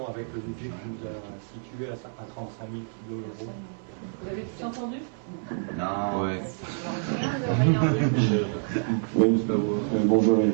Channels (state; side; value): silent; left; 57 dB below the other